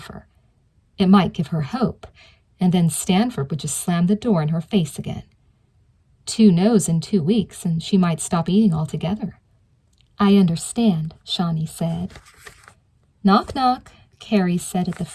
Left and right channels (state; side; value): identical; both; correlation 1.00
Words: It might give her hope, and then Stanford would just slam the door in her face again. 2 no's in 2 weeks, and she might stop eating altogether. I understand, Shawnee said. Knock, knock, Carrie said at the